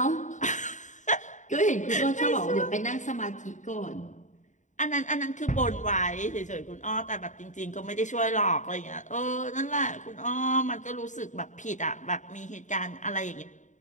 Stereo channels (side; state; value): right; late; 0.36 ms